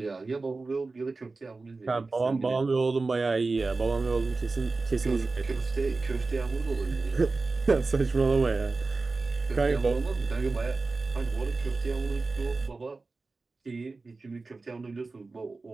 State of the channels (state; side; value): quieter; left; 3.7 dB